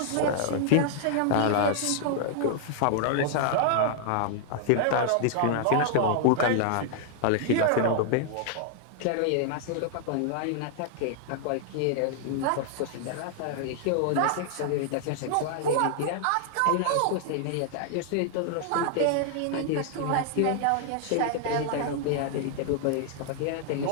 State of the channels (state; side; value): different; both; correlation 0.00